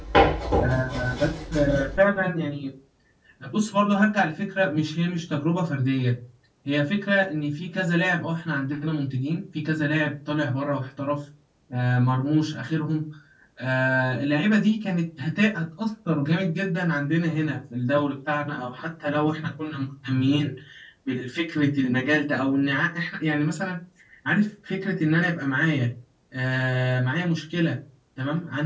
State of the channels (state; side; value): identical; both; correlation 1.00